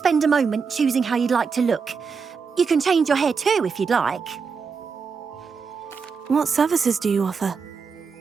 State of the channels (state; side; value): quieter; left; 5.5 dB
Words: a moment choosing how you'd like to look? You can change your hair too if you'd like. What services do you offer?